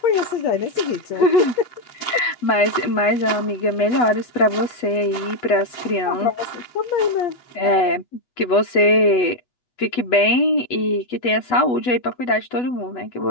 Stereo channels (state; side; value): late; right; 8.1 ms